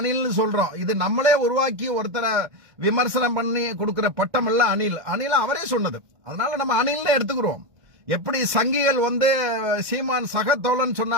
சொல்றோம். இது நம்மளே உருவாக்கி ஒருத்தரை விமர்சனம் பண்ணி கொடுக்கிற பட்டம் எல்லாம் அனில் அவரே சொன்னது. அதனால நம்ம அனில்னு எடுத்துக்கிறோம். எப்படி சங்கிகள் சீமான் சகத்தோழன்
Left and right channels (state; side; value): late; left; 1.6 ms